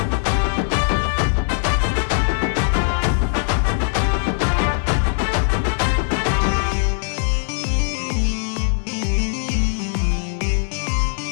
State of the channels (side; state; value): right; silent; 66 dB below the other